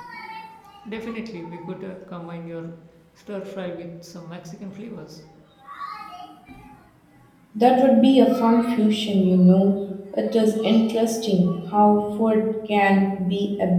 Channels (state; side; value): identical; both; correlation 1.00